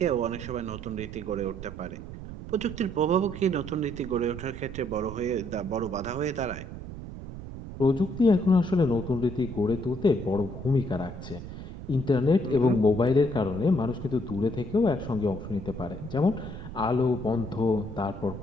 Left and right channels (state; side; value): noise; right; rumble, 10 dB below the sound